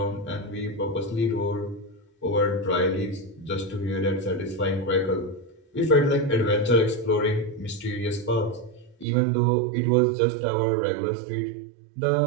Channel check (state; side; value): drops out; left; at 9.1 s